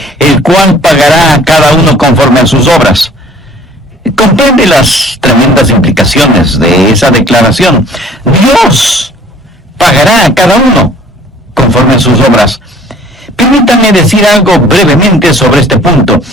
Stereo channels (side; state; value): both; normal; correlation 0.53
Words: el cual pagará a cada uno conforme a sus obras. Comprende las tremendas implicaciones de esa declaración. Dios pagará a cada uno conforme a sus obras. Permítame decir algo brevemente sobre este punto.